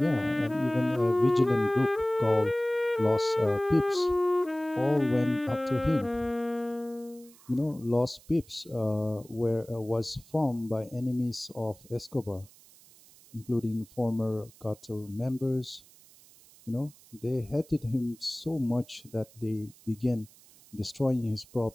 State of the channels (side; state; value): right; noise; hiss, 25 dB below the sound